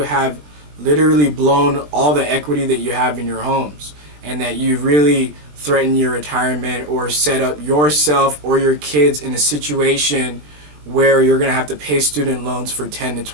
literally blown all the equity that you have in your homes, and that you've really threatened your retirement or set up yourself or your kids in a situation where you're going to have to pay student loans for 10 to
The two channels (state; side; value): late; left; 20 ms